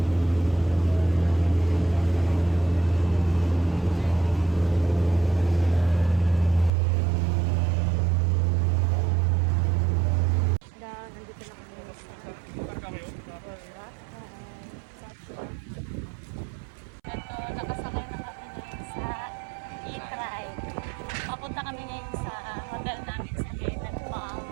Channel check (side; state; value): left; drops out; at 6.7 s